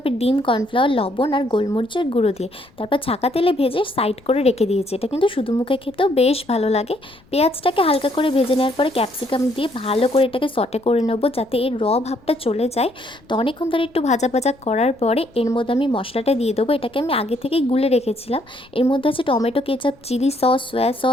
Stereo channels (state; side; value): noise; left; rumble, 29 dB below the sound